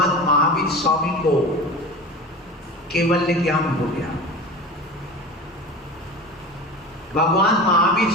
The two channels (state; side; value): normal; both; correlation 0.32